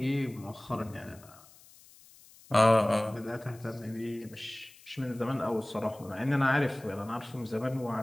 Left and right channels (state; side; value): noise; left; hiss, 24 dB below the sound